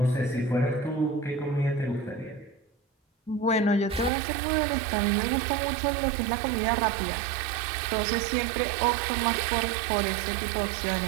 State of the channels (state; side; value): drops out; left; at 4.1 s